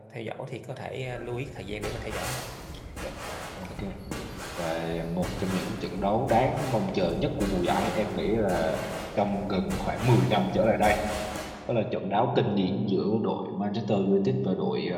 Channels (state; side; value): identical; both; correlation 1.00